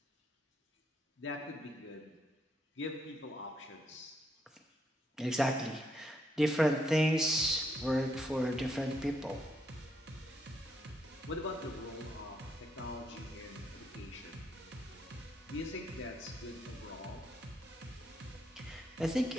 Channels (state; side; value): normal; both; correlation 0.76